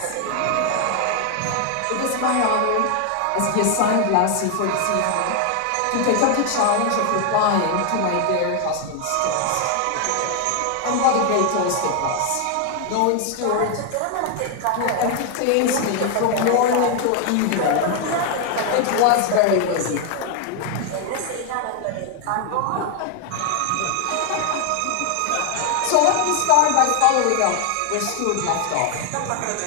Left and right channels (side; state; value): both; different; correlation 0.01